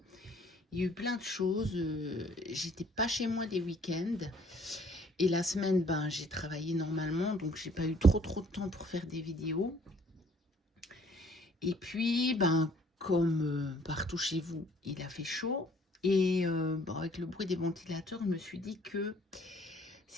Il y a eu plein de choses, j'étais pas chez moi des week-ends et la semaine j'ai travaillé normalement, donc j'ai pas eu trop de temps pour faire des vidéos. Et puis comme partout chez vous il a fait chaud et avec le bruit des ventilateurs je me suis dit que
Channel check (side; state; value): both; normal; correlation 0.59